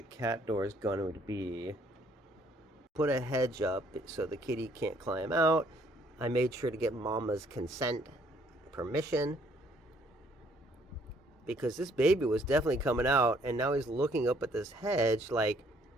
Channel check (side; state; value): both; normal; correlation 0.64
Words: cat door is going to be. Put a hedge up so the kitty can't climb out. I made sure to get Mama's consent, permission, because this baby was definitely coming out, and now he's looking up at this hedge like,